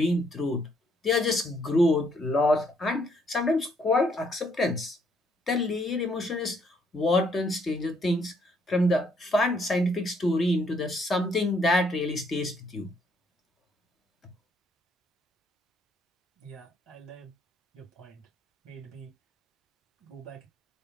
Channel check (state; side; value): normal; both; correlation 0.69